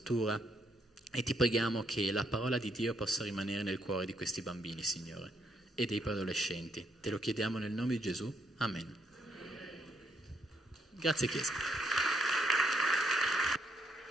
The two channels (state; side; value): normal; both; correlation 0.74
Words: E ti preghiamo che la parola di Dio possa rimanere nel cuore di questi bambini, Signore, e dei preadolescenti. Te lo chiediamo nel nome di Gesù. Amen. Grazie Chiesa.